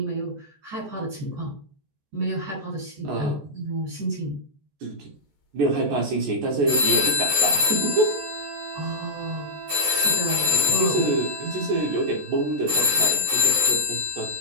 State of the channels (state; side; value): late; left; 14 ms